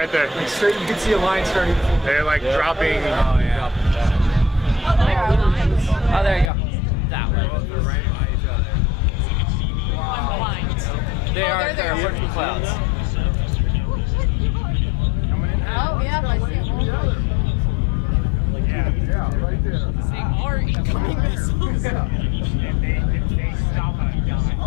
there. Like straight, you can see a line starting. They're like dropping. Oh, yeah. Oh, there you go. That one. They're right by each other. I'm blind. They are. They're working clouds. Oh, yeah, I see him. Yeah, right there. They are incoming missiles.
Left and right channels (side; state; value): right; drops out; at 6.5 s